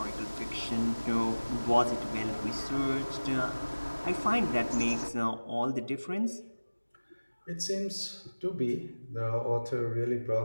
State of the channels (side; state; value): both; inverted; correlation -1.00